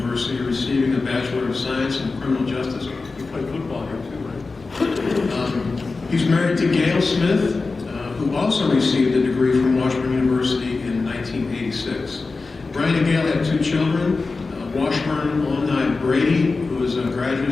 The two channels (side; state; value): right; quieter; 3.9 dB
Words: receiving a Bachelor of Science in Criminal Justice. He played football here too, right? He's married to Gail Smith, who also received a degree from Washburn University in 1986. Brian and Gail have 2 children, Washburn alumni Brady, who is a